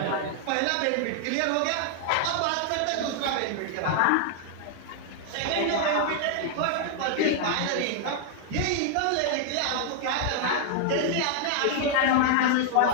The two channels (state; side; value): different; both; correlation 0.00